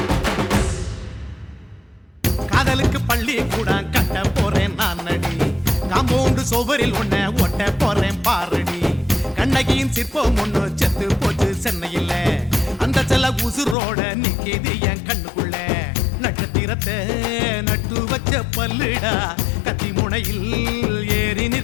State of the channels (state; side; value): drops out; right; at 13.8 s